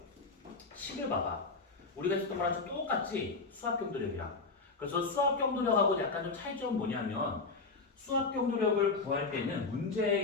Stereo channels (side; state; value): right; quieter; 4.0 dB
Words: 10을 봐봐. 우리가 했었던 거랑 좀 똑같지? 수압경도력이랑. 그래서 수압경도력하고 약간 좀 차이점은 뭐냐면 수압경도력을 구할 때는